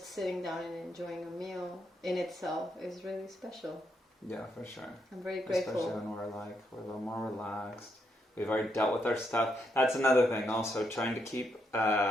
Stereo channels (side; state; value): both; normal; correlation 0.78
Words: sitting down and enjoying a meal in itself is really special. Yeah, for sure. I'm very grateful. Especially when we're a little more relaxed. We've already dealt with our stuff. That's another thing also, trying to keep